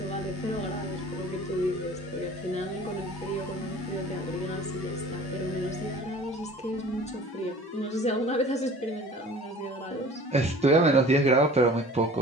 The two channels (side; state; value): both; normal; correlation 0.45